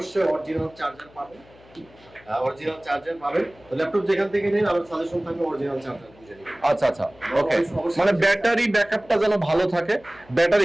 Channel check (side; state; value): left; noise; hum, 26 dB below the sound